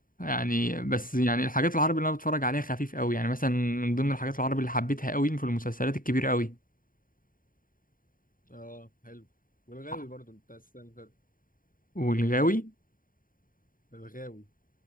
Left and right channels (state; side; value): late; right; 0.40 ms